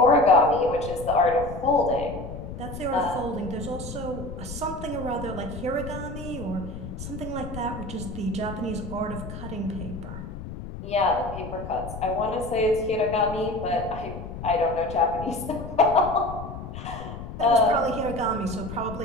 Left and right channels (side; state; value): left; noise; rumble, 10 dB below the sound